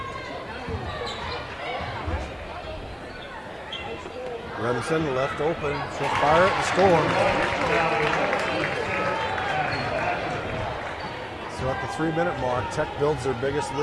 Remsen left open. She'll fire it and score. So at the 3-minute mark, Tech builds their biggest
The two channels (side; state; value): both; identical; correlation 1.00